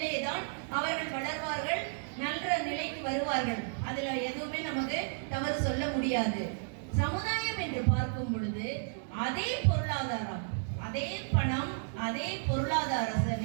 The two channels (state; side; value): silent; left; digital silence